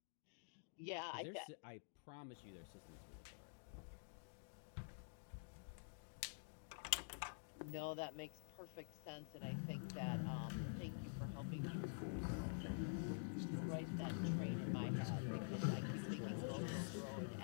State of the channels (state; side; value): silent; right; digital silence